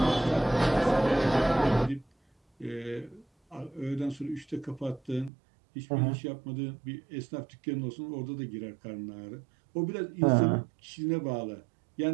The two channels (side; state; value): left; drops out; at 5.3 s